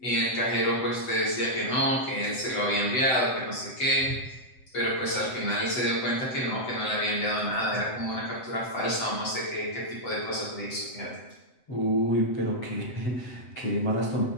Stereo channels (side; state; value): right; late; 7.9 ms